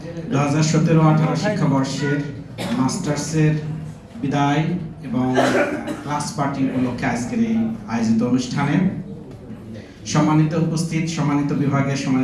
2017-18 শিক্ষাবর্ষের মাস্টার্সের বিদায় এবং ক্লাস পার্টি উপলক্ষে আজকের এই আয়োজিত অনুষ্ঠানে সম্মানিত উপস্থিত, সম্মানিত বিভাগের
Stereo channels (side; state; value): both; identical; correlation 1.00